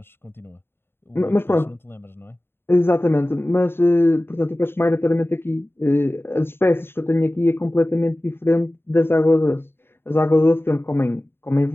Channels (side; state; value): right; late; 0.11 ms